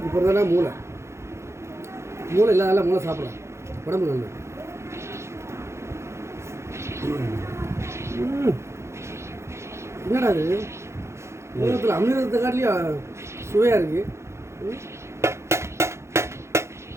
இப்போ தானே மூளை இல்லாத மூளை சாப்பிடலாம், உடம்பு நல்லது. என்னடா அது உலகத்தில் அமிர்தத்தை காட்டிலையும் சுவையாக இருக்கு.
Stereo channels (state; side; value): late; left; 0.13 ms